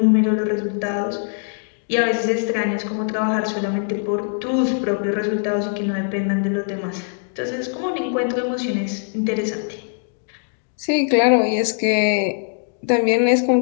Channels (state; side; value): silent; right; digital silence